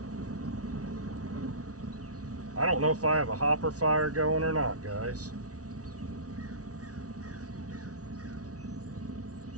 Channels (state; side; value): late; left; 0.67 ms